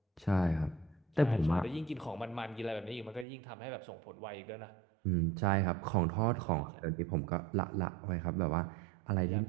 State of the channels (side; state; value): left; drops out; at 3.2 s